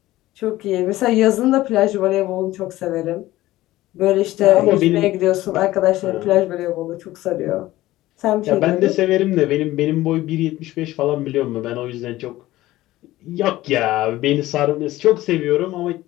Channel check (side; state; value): right; quieter; 16.5 dB